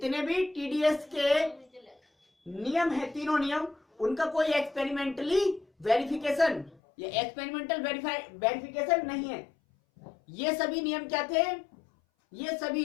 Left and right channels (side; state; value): right; drops out; at 6.8 s